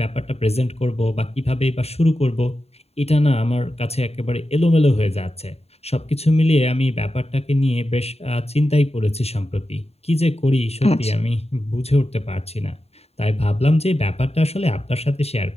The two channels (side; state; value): right; late; 0.30 ms